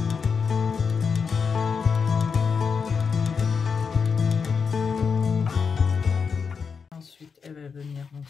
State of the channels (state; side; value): quieter; right; 5.7 dB